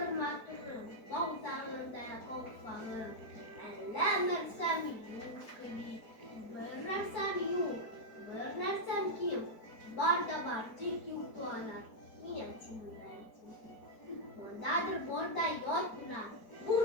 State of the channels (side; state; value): right; late; 4.6 ms